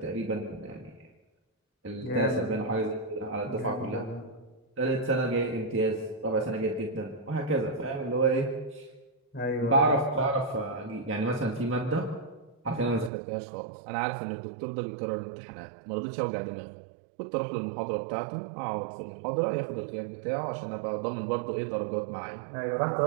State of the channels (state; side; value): drops out; left; at 13.1 s